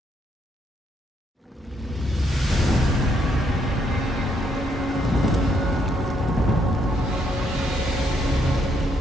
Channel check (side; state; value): both; normal; correlation 0.74